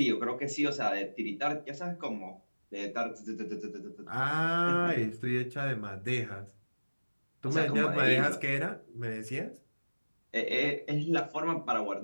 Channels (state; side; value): inverted; both; correlation -1.00